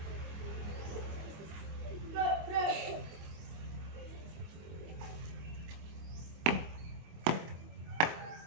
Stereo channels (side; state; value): left; late; 25 ms